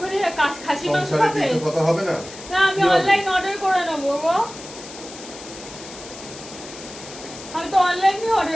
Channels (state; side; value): noise; left; hiss, 15 dB below the sound